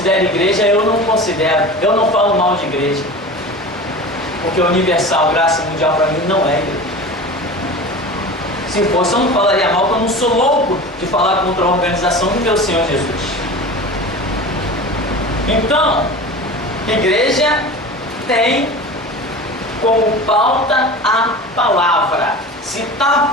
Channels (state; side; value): normal; both; correlation 0.34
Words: igreja, eu não considero. Eu não falo mal de igreja. Porque universal, graça e mundial para mim não é igreja. Se fosse, eu não falaria mal, porque eu não sou louco de falar contra a organização do meu Senhor Jesus. Então, igreja tem como pauta a palavra. Se